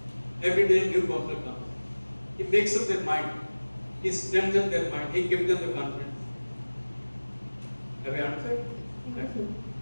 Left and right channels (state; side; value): inverted; both; correlation -1.00